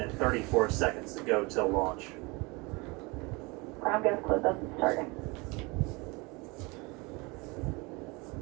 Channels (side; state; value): left; quieter; 26.4 dB